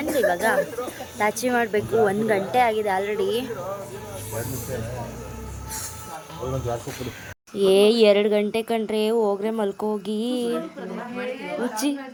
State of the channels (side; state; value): both; identical; correlation 1.00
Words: ಇವಾಗ ಲಾಚಿ ಮಾಡಬೇಕು. 1 ಗಂಟೆ ಆಗಿದೆ ಆಲ್ರೆಡಿ. 2 ಗಂಟೆ ಕಂಡ್ರೆ ಹೋಗ್ರೆ ಮಲ್ಕೋಗಿ. ಹುಚ್ಚಿ